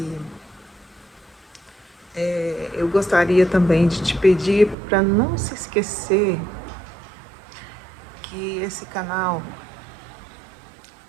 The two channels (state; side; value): drops out; left; at 4.8 s